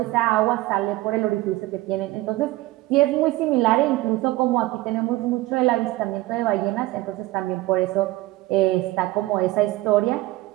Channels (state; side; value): quieter; left; 18.4 dB